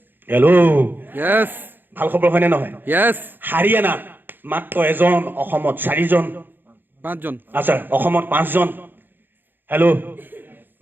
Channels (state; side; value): late; left; 0.093 ms